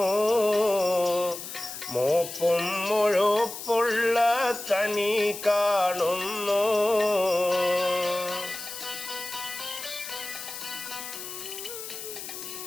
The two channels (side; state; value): left; noise; hiss, 9 dB below the sound